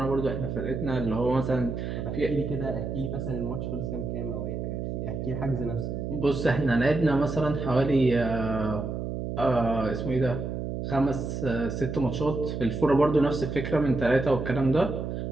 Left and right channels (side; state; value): right; noise; hum, 4 dB below the sound